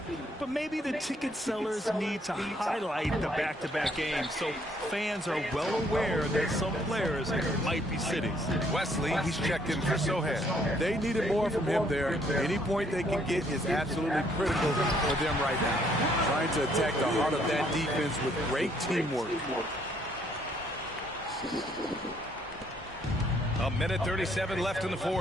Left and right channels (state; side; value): normal; both; correlation 0.67